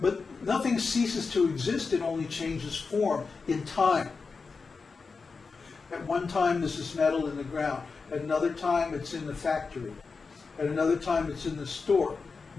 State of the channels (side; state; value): right; quieter; 4.7 dB